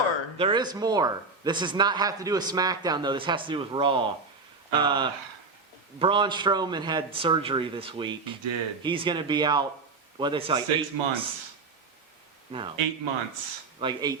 There is more. This does not have to do with SmackDown though. This has to do with Raw. Braun Strowman had surgery this week. He did. He's going to be out. What they say? Like 6 8 months. No. 8 months. Like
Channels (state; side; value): quieter; left; 4.1 dB